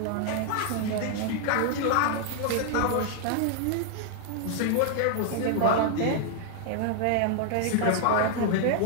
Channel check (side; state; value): both; different; correlation -0.01